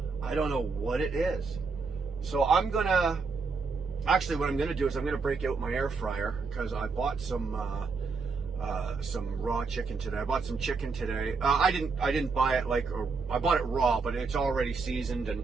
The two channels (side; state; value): left; quieter; 4.6 dB